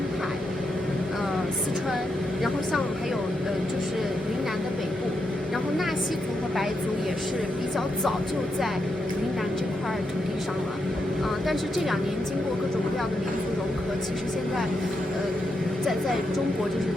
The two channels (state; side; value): normal; both; correlation 0.83